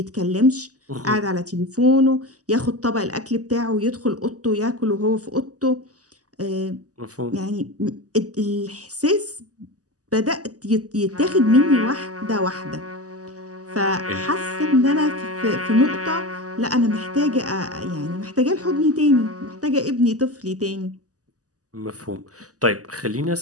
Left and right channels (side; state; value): left; late; 0.67 ms